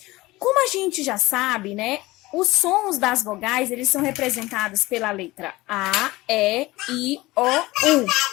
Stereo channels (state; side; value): quieter; right; 19.8 dB